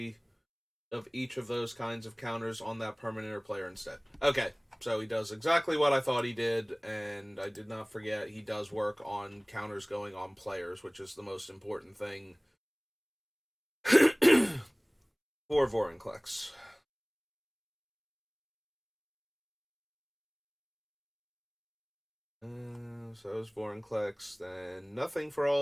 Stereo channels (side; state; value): both; identical; correlation 1.00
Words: of each of those kinds of counters on that permanent or player instead. Okay, so he does exactly what I thought he did, and I did not forget he does work on counters going on players, which is the most important thing for Vorinclex. So is Vorinclex, then nothing for